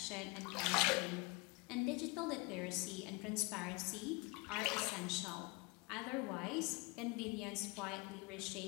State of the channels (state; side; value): quieter; right; 27.9 dB